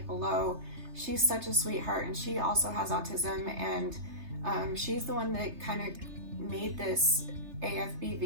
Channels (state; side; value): late; left; 3.3 ms